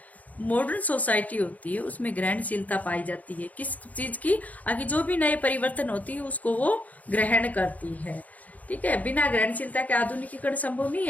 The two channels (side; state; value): right; late; 0.075 ms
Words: मॉडर्न सोसाइटी होती है, उसमें ग्रहणशीलता पाई जाती है। किस चीज की? आगे जो भी नए परिवर्तन होती है उसको वो ग्रहण करती है। ठीक है, बिना ग्रहणशीलता के आधुनिकीकरण संभव नहीं